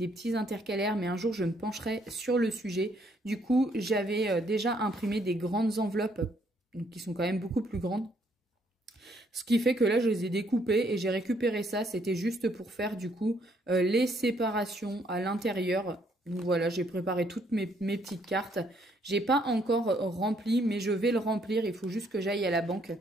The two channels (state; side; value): normal; both; correlation 0.69